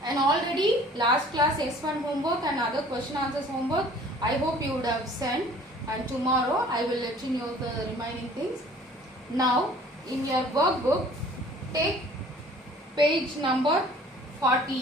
And already last class S1 homework and other question answers homework, I hope you would have sent. And tomorrow I will let you know the remaining things. Now in your workbook, take page number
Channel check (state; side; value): normal; both; correlation 0.51